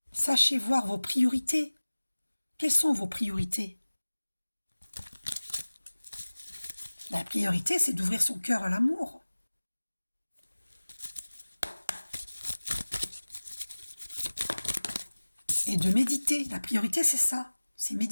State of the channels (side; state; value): both; inverted; correlation -1.00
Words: Sachez voir vos priorités. Quelles sont vos priorités? La priorité, c'est d'ouvrir son cœur à l'amour. Et de méditer. La priorité, c'est ça. C'est